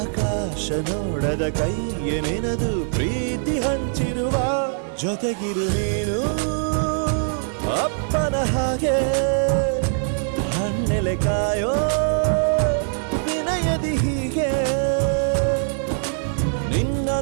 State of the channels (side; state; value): left; silent; digital silence